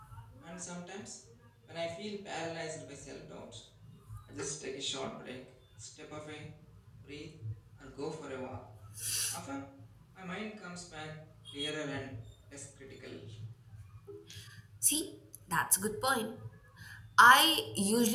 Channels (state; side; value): identical; both; correlation 1.00